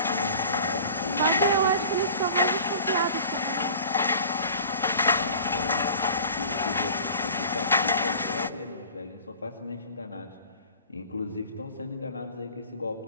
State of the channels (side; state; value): both; inverted; correlation -0.43